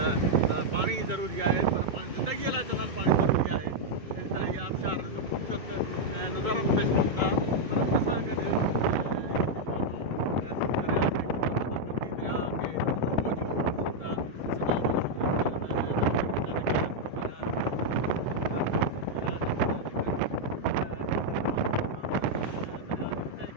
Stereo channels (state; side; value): late; left; 2.2 ms